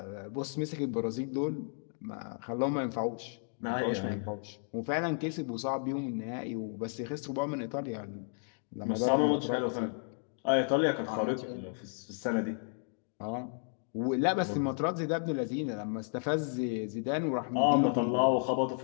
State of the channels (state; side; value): silent; right; 56 dB below the other